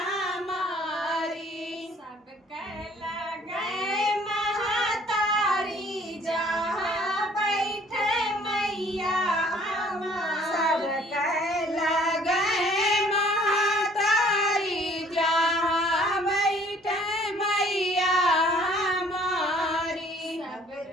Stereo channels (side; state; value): both; normal; correlation 0.57